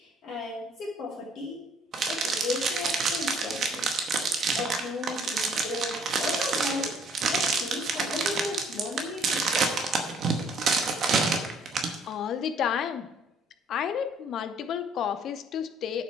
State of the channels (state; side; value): normal; both; correlation 0.60